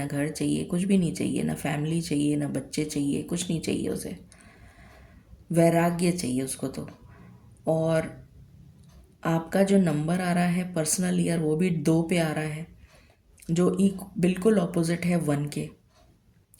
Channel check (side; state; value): both; identical; correlation 1.00